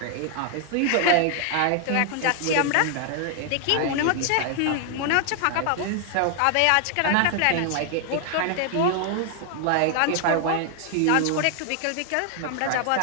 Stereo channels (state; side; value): different; both; correlation 0.00